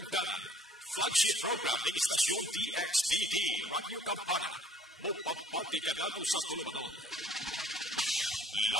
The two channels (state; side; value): normal; both; correlation 0.55